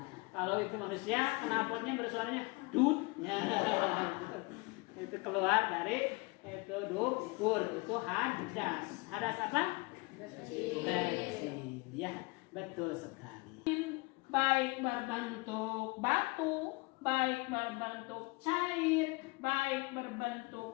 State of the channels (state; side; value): quieter; right; 26.5 dB